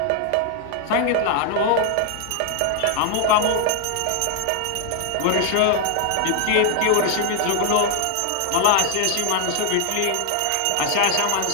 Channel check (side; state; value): both; different; correlation 0.00